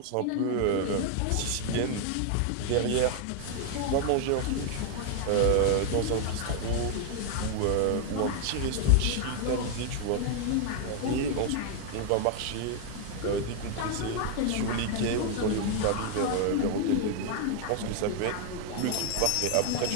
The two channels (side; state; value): both; different; correlation 0.00